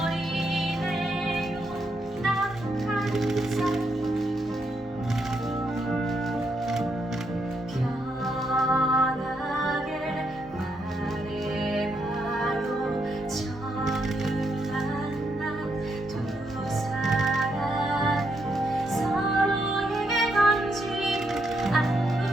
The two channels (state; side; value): normal; both; correlation 0.78